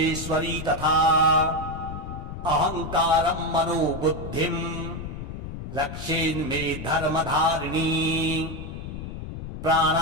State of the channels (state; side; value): noise; left; rumble, 9 dB below the sound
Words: तथा अहङ्कारं मनोबुद्धिं रक्षेन्मे धर्मधारिणी